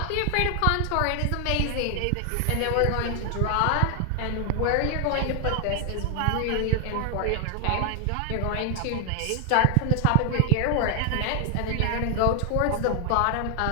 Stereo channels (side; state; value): both; different; correlation 0.00